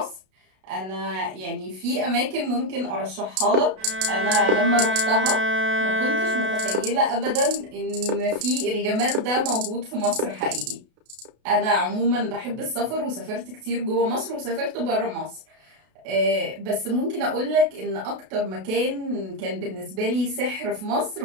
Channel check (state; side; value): late; left; 32 ms